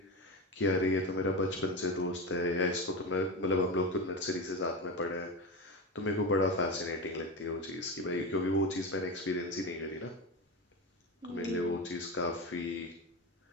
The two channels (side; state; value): both; normal; correlation 0.20